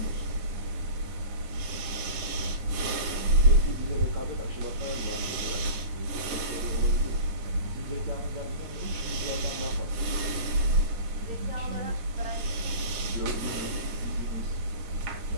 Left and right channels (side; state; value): left; late; 9.7 ms